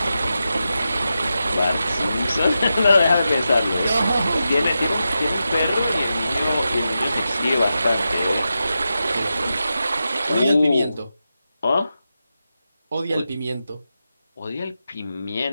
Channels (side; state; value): both; inverted; correlation -0.90